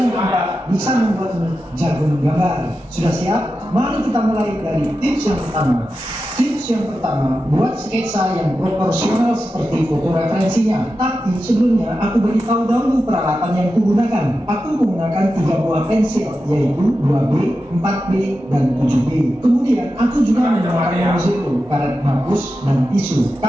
keempat bisa membuatmu jago menggambar. Sudah siap? Mari kita mulai dari tips yang pertama. Tips yang pertama, buat sketsa yang proporsional seperti foto referensinya. Tapi sebelumnya aku beritahu dahulu peralatan yang kugunakan. Aku menggunakan 3 buah pensil, yaitu 2B, 4B, dan 7B. Kemudian aku juga menggunakan zero, karet hapus, dan tisu.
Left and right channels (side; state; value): both; normal; correlation 0.91